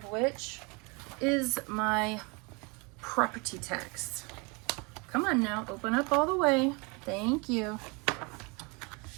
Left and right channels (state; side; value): quieter; left; 29.8 dB